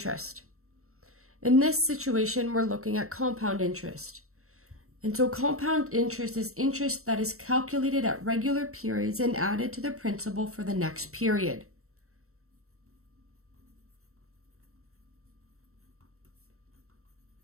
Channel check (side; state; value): left; late; 0.63 ms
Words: In this situation, we're looking at compound interest. And so compound interest is interest that is calculated at regular periods and added to the principal for the next period.